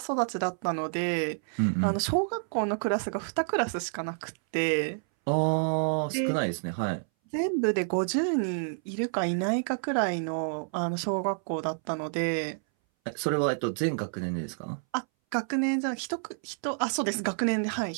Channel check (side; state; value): left; silent; 59 dB below the other